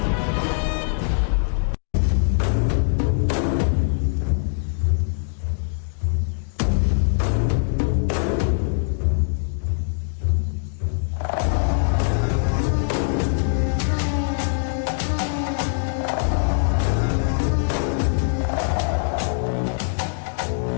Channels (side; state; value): right; silent; digital silence